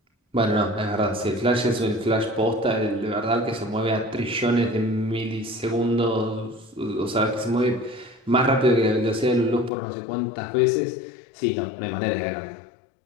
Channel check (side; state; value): right; drops out; at 9.7 s